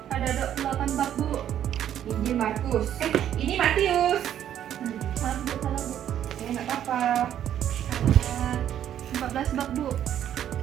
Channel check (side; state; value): left; quieter; 10.6 dB